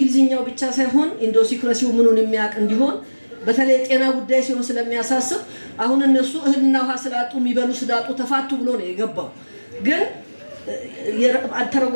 ብቻ ሳይሆን ኢንዶሲክራሲው ምኑን የሚያቅ እንዲሆን በተለይ ጤና ጉዳይ ሲሆን ስለሚያሳስብ አሁን እነሱ እህልና ውሃ ስላጡ የሚበሉ ስዳጡ ተፋቱ ብሎ ነው የገባው። ግን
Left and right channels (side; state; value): both; inverted; correlation -1.00